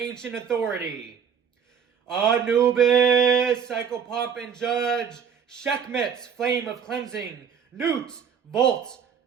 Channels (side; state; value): left; quieter; 7.3 dB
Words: authority. Anubis, psychopomp and judge, Sekhmet, flame of cleansing, Newt, vault